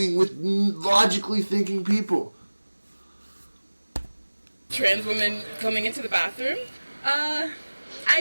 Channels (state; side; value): inverted; both; correlation -1.00